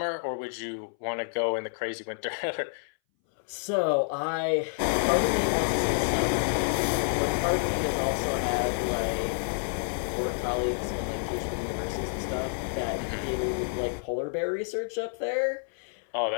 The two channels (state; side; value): silent; right; 59 dB below the other